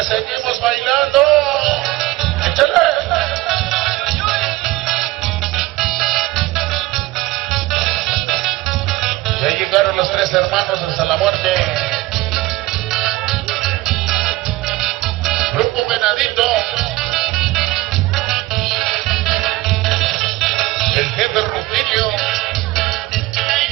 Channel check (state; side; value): quieter; left; 19.1 dB